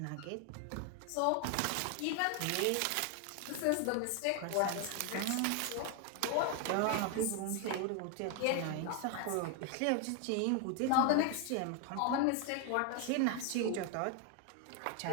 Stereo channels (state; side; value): different; both; correlation 0.01